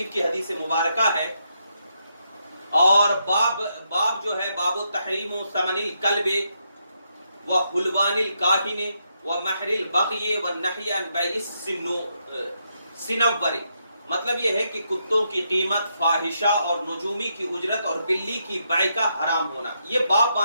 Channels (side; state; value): both; inverted; correlation -0.80